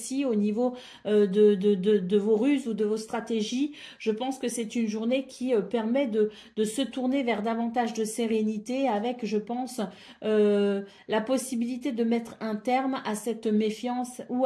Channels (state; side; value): identical; both; correlation 1.00